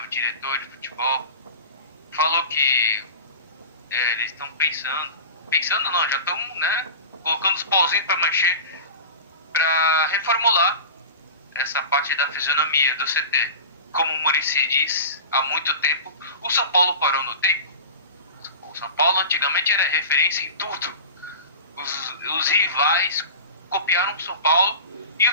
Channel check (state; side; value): inverted; both; correlation -0.33